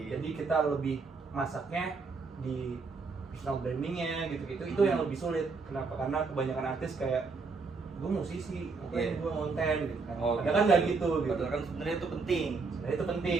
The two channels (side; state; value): left; quieter; 4.4 dB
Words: Jadi kita lebih masaknya di personal brandingnya gitu-gitu. Itu yang lebih sulit. Kenapa? Karena kebanyakan artis kayak gue musisi, Iya. gue konten gitu kan. Oh, Padahal kan nggak gitu. Padahal kan sebenarnya itu penting. Sebenarnya itu penting